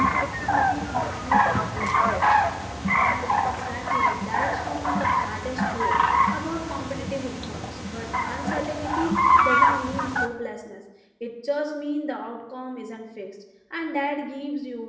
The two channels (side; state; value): both; identical; correlation 1.00